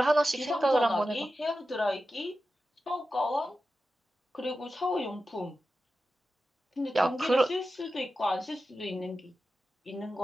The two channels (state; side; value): normal; both; correlation 0.92